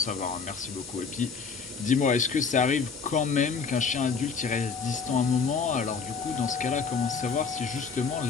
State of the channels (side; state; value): right; quieter; 5.4 dB